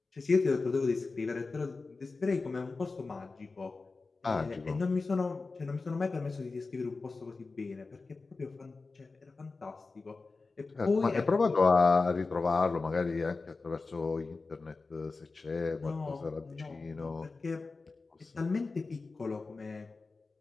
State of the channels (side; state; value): right; quieter; 3.9 dB